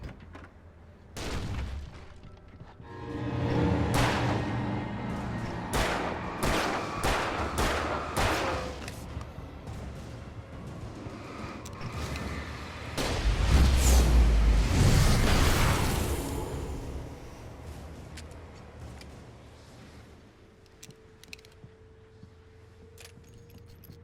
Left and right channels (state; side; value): identical; both; correlation 1.00